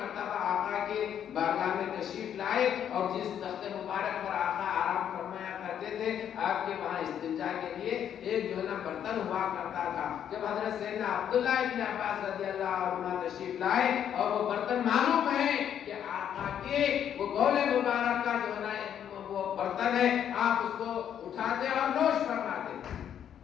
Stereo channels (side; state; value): right; quieter; 9.4 dB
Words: آقا کے بارگاہ میں تشریف لائے اور جس تخت مبارک پر آقا آرام فرمایا کرتے تھے، آپ کے وہاں استنجا کے لیے ایک جو ہے نا برتن ہوا کرتا تھا۔ جب حضرت سیدنا عبداللہ ابن عباس رضی اللہ عنہ تشریف لائے اور وہ برتن معلوم ہے کہ آقا کے وہ بول مبارک کا جو ہے نا وہ برتن ہے، آپ اس کو اٹھاتے اور نوش فرماتے۔